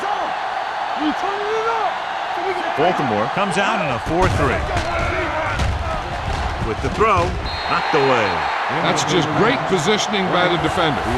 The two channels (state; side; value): identical; both; correlation 1.00